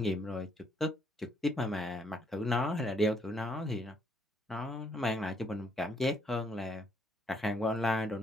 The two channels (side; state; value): both; normal; correlation 0.70